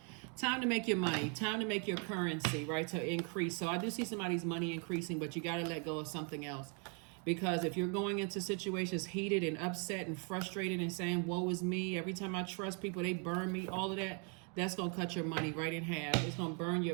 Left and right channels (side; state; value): left; quieter; 37.7 dB